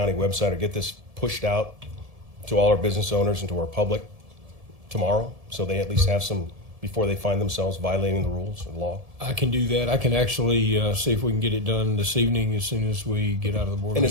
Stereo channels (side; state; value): left; late; 1.7 ms